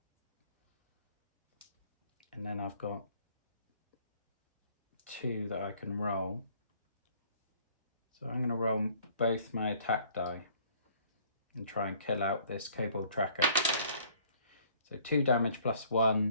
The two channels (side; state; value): both; inverted; correlation -0.58